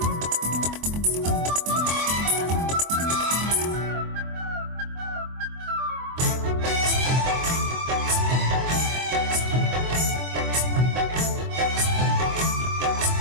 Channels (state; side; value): late; left; 24 ms